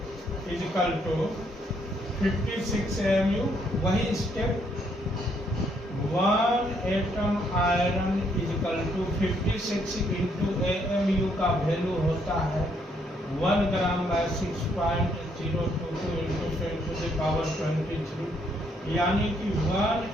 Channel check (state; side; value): normal; both; correlation 0.71